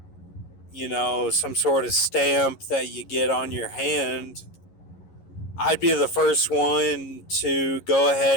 some sort of stamp that you get on your hand, I'd be the first one to go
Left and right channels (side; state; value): right; late; 11 ms